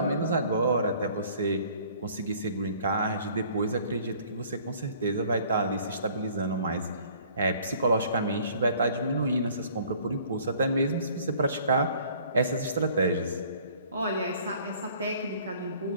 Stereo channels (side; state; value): both; inverted; correlation -0.55